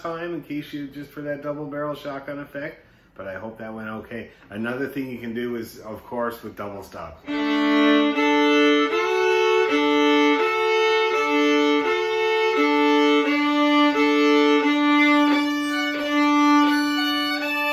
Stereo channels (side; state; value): both; identical; correlation 1.00